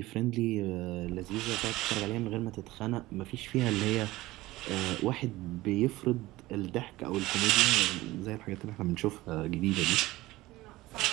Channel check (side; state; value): left; quieter; 18.4 dB